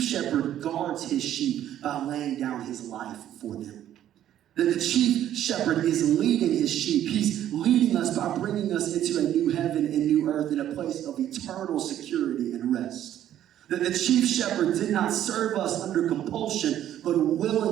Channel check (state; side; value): quieter; left; 11.5 dB